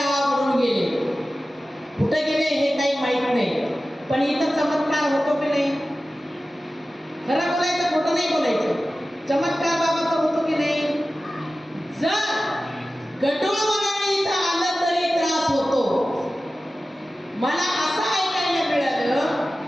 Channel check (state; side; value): normal; both; correlation 0.95